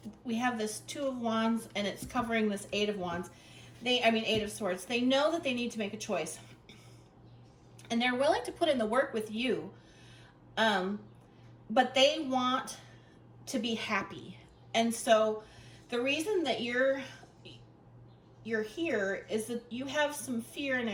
Two of Wands, and it's covering this Eight of Wands. Eight of Swords. They know that they need to make a choice, and they're willing to put in the work with you, but they want to be happy. And so the reason that you're here is that you have some fear and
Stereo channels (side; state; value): both; identical; correlation 1.00